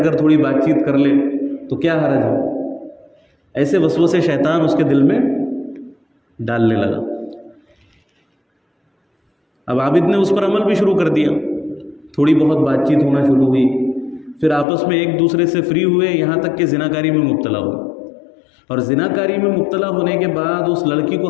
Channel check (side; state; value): right; drops out; at 14.7 s